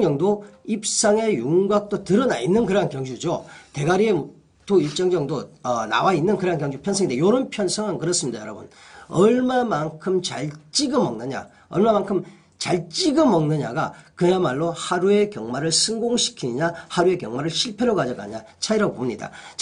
정도 입상의 윤곽도 드러나 있는 그런 경주죠. 대가리에 또 일정 정도 나와 있는 그런 경주 편성인데, 이런 편성은 그렇습니다, 여러분. 얼마만큼 잘 찍어 먹느냐가 그야말로 하루의 경마를 성공시키느냐, 하루의 경마를 실패로 가져가냐 차이라고 봅니다.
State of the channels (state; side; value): identical; both; correlation 1.00